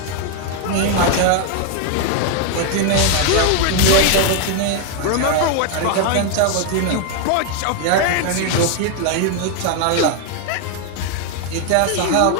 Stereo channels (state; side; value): different; both; correlation 0.00